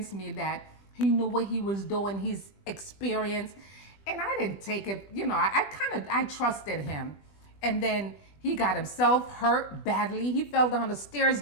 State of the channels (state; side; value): late; right; 20 ms